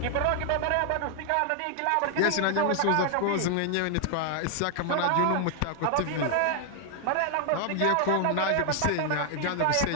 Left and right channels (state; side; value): different; both; correlation 0.00